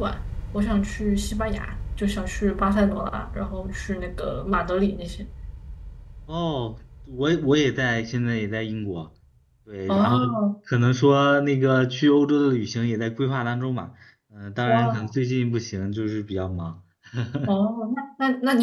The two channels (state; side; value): identical; both; correlation 1.00